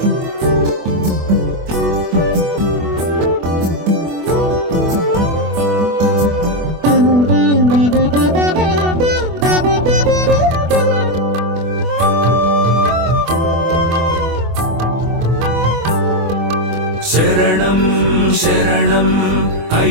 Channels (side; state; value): left; late; 24 ms